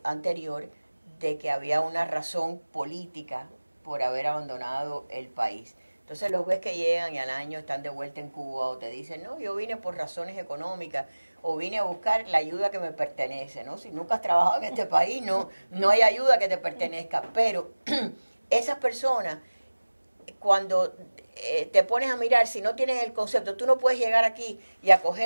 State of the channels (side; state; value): both; inverted; correlation -1.00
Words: anterior, de que había una razón política por haber abandonado el país. Entonces los ves que llegan y al año están de vuelta en Cuba, o te dicen, no, yo vine por razones económicas, o vine a buscar la ayuda que me pertenece, ¿no? Si nunca has trabajado en este país, no hay ayuda que te pertenezca. Pero esas personas, cuando te pones a mirar, si no tienes el concepto, tú no puedes llegar aquí y